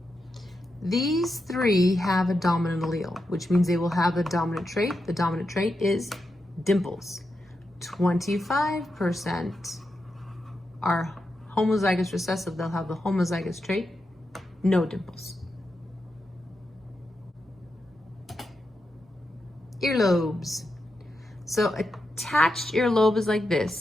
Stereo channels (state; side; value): normal; both; correlation 0.87